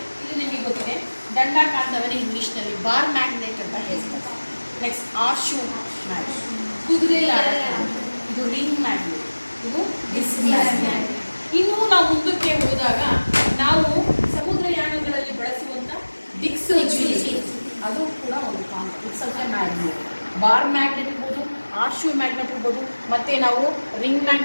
ಇಲ್ಲಿ ನಿಮಗೆ ಗೊತ್ತಿದೆ ದಂಡಾಕಾಂತವನ್ನು ಇಂಗ್ಲೀಷ್ನಲ್ಲಿ ಬಾರ್ ಮ್ಯಾಗ್ನೆಟ್ ಅಂತ ಹೇಳ್ತಾರೆ. ನೆಕ್ಸ್ಟ್ ಆರ್ಶು ಮ್ಯಾಗ್ನೆಟ್, ಕುದುರೆ ಇದು ರಿಂಗ್ ಮ್ಯಾಗ್ನೆಟ್, ಇದು ಡಿಸ್ಕ್ ಮ್ಯಾಗ್ನೆಟ್. ಇನ್ನೂ ನಾವು ಮುಂದಕ್ಕೆ ಹೋದಾಗ ನಾವು ಸಮುದ್ರಯಾನಗಳಲ್ಲಿ ಬಳಸುವಂಥ ದಿಕ್ಸೂಚಿ, ಅದು ಕೂಡ ಒಂದು ಕಾಂತ. It's also magnet. Bar magnet ಇರ್ಬೋದು, ಆರ್ಶು ಮ್ಯಾಗ್ನೆಟ್ ಇರ್ಬೋದು, ಮತ್ತು ನಾವು ರಿಂಗ್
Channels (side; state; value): both; inverted; correlation -1.00